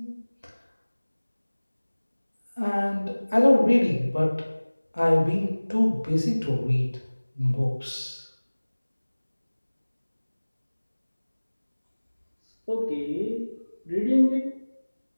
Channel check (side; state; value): both; inverted; correlation -1.00